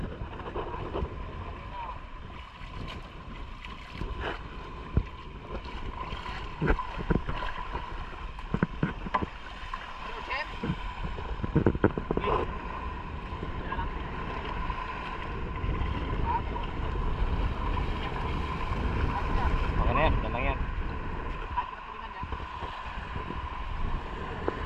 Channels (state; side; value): identical; both; correlation 1.00